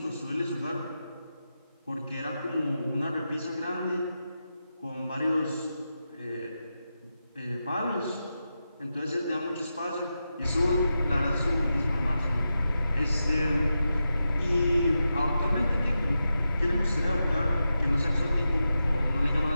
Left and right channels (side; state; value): both; inverted; correlation -0.89